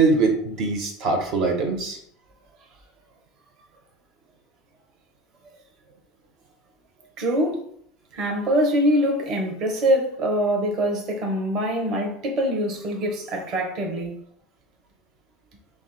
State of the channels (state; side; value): normal; both; correlation 0.35